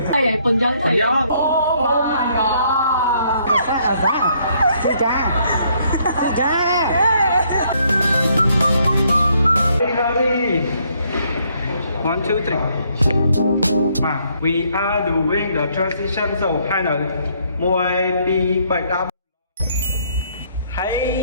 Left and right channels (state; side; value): inverted; both; correlation -0.69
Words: 哎，本江才有。 One, two, three. We are doing the transition, so kind of more be but up.